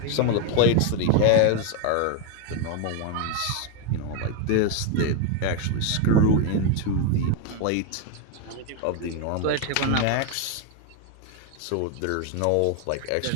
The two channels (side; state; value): both; different; correlation 0.01